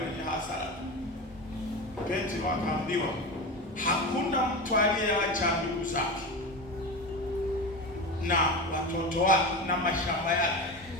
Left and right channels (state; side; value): normal; both; correlation 0.24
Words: hasara. Petro akaambiwa, hakuna mtu aliyeacha ndugu zake na watoto wake na mashamba yake